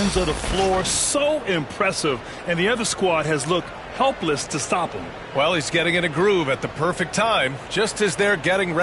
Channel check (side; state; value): both; identical; correlation 1.00